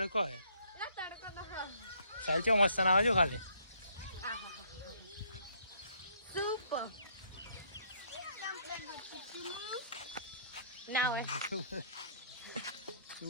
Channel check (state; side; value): inverted; both; correlation -0.64